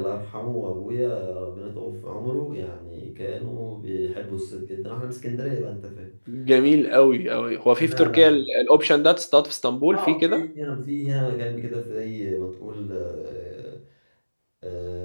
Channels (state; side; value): inverted; both; correlation -1.00